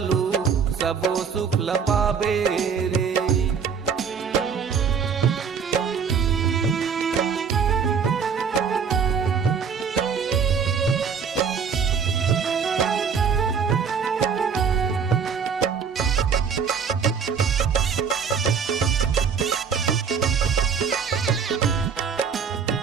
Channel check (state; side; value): quieter; left; 6.5 dB